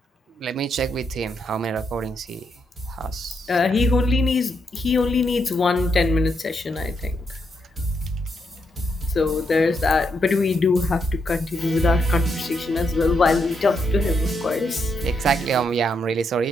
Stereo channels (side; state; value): both; normal; correlation 0.80